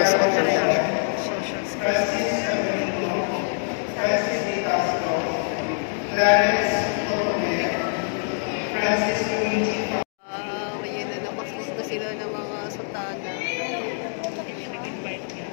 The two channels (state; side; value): silent; right; digital silence